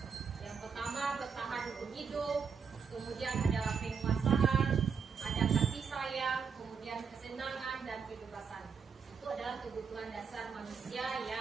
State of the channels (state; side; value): quieter; left; 6.2 dB